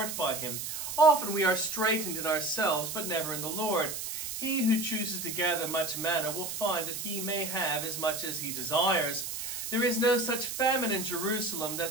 by him. Often we are straitened in ourselves, but never in the Lord. He who chooses to gather much manna will find that he may have as much as he desires. There is no such famine in Jerusalem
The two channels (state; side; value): noise; right; hiss, 5 dB below the sound